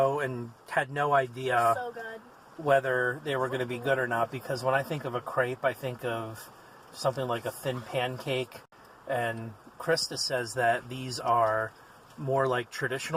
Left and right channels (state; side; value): identical; both; correlation 1.00